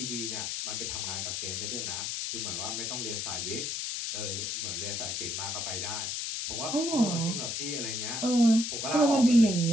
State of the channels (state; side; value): noise; left; hiss, 2 dB below the sound